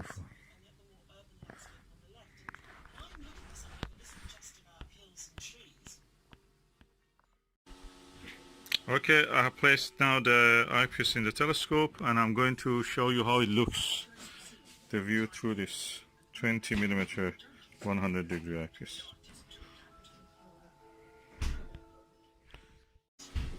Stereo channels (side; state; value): both; identical; correlation 1.00